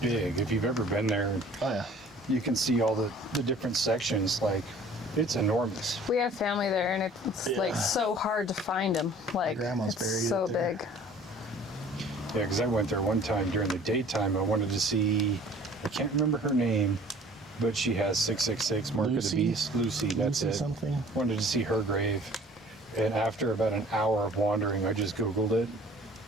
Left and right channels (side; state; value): both; normal; correlation 0.50